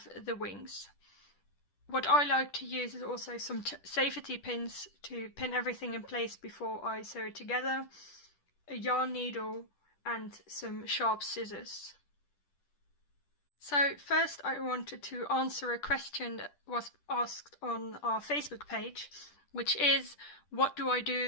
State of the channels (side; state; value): right; late; 10 ms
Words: the wings. What I like to use is also some safety pins to pin everything in place before I sew it together, a yarn needle, and some sharp scissors. So first I wanted to answer a question that was asked on our Facebook page, which is, what do I